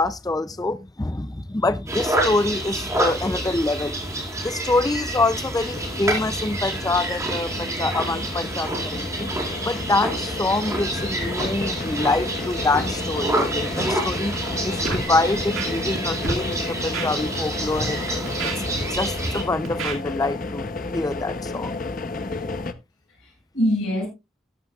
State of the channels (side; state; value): both; normal; correlation 0.59